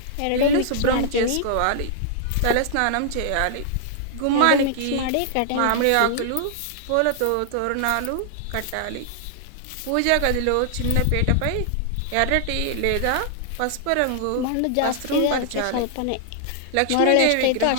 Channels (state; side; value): different; both; correlation -0.01